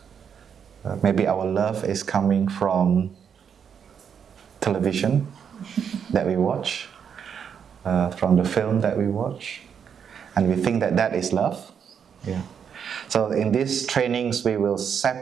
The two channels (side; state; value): left; quieter; 7.5 dB